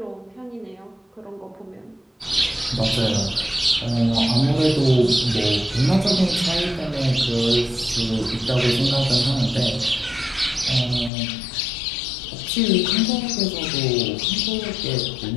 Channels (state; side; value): drops out; right; at 11.1 s